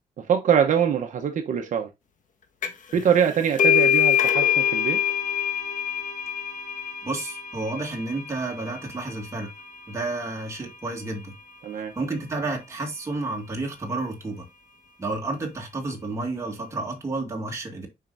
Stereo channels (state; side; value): normal; both; correlation 0.36